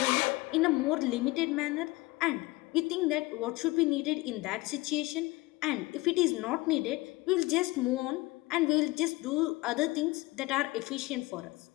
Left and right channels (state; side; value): quieter; right; 21.5 dB